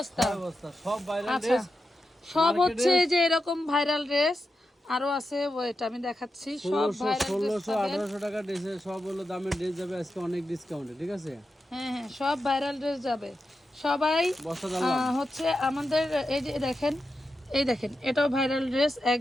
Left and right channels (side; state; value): both; normal; correlation 0.89